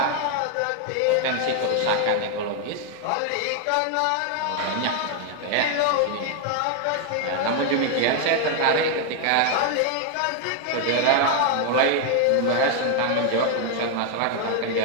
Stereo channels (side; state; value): both; different; correlation 0.00